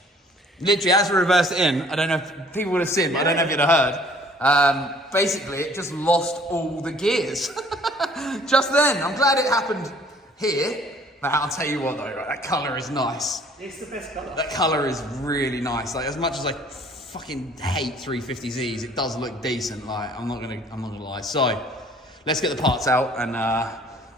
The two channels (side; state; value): both; normal; correlation 0.56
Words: Literally, as we reversed it in, I don't know if people would have seen, but I don't know if you'd have heard. Basically, it just lost all the gears. Just then. I'm glad it happened here. But I'll tell you what though, right, that colour is nice. It's the best colour. That colour is really nice. Like, as much as I fucking hate 350Zs, it does look decent. Like, I'm not gonna lie. So, let's get the parts out and